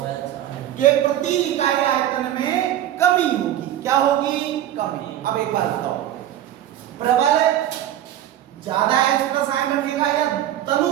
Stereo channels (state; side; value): quieter; left; 12.1 dB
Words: के प्रति इकाई आयतन में कमी होगी। क्या होगी? कमी। अब एक बात बताओ, प्रबल ज्यादा H+ आयन रखेगा या